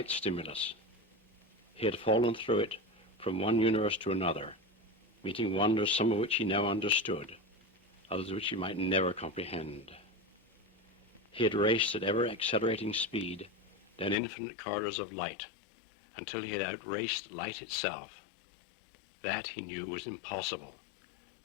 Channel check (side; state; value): right; drops out; at 14.2 s